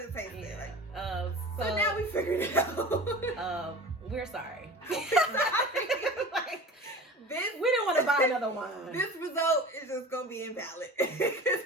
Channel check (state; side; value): normal; both; correlation 0.37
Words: tastes like. So now we figured it out. We're sorry. We didn't want to buy another wine. This result is just gonna be invalid.